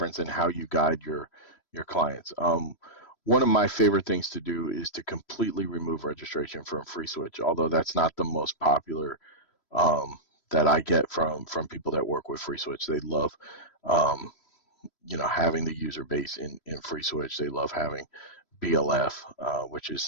and how you guide your clients. One of my favorite things to do is to completely remove registration from FreeSWITCH, although that's not the most popular that I get from people that work with FreeSWITCH. They love having the user base in FreeSWITCH. They love having BLF, which is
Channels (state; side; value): late; right; 3.0 ms